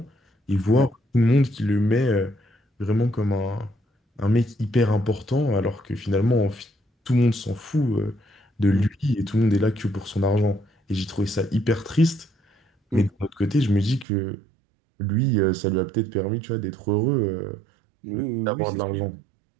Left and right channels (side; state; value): left; drops out; at 14.1 s